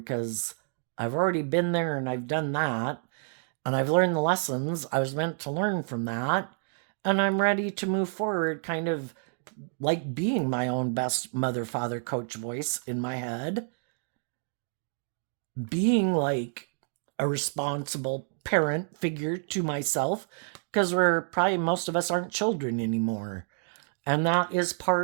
because I've already been there and I've done that. And I've learned the lessons I was meant to learn from that. And I'm ready to move forward, kind of like being my own best mother, father, coach voice in my head. Being like a responsible parent figure to myself, because most of us aren't children anymore. And that is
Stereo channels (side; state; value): left; silent; digital silence